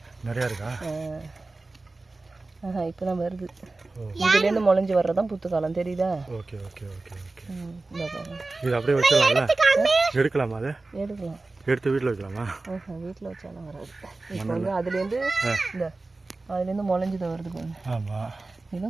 நிறையா இருக்கா? இப்போ தான் வருது. இதுலேருந்து முளைஞ்சி வர்றதான் புத்து காலம் தெரியுதா? Okay okay okay okay. இது அப்படியே வச்சிடலாம்ல? எடுக்கலாமா? அதை எடுக்கலாம். எடுத்து வீட்டில் வைக்கலாமா? வீட்டில் வச்சாலும் வராது. இப்போ வந்து அதுலேருந்து அதுலேருந்து முளைஞ்சிதான் வருது பாருங்க. ஆமாம்.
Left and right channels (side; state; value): left; quieter; 3.3 dB